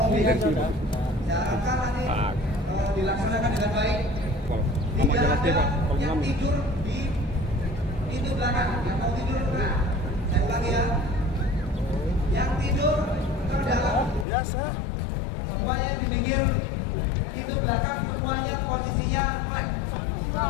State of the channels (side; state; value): right; drops out; at 14.2 s